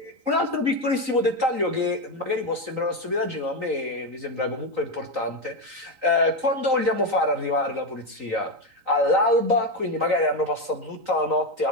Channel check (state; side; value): late; left; 3.9 ms